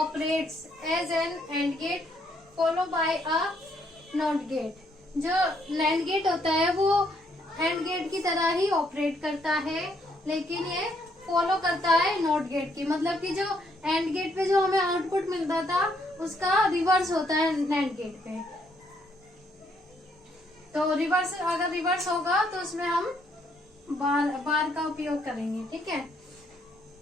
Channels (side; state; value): both; normal; correlation 0.71